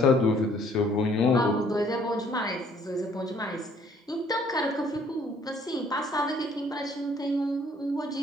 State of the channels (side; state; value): both; normal; correlation 0.61